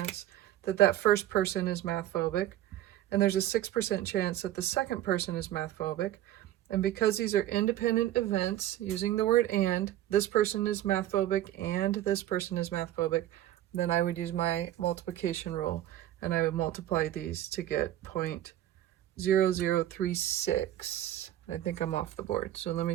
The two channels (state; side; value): quieter; left; 13.1 dB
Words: that that first person is math phobic, and there's a 6% chance that the second person is math phobic. And because these are independent events, using the word and, this person is math phobic and this person is math phobic, then I would use my multiplication rule and I would multiply these to get 0.0036. I think I'm off the board, so let me